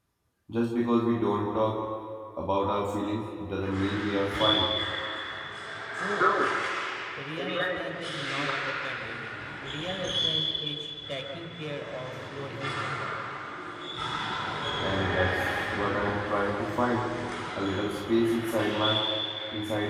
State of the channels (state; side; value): identical; both; correlation 1.00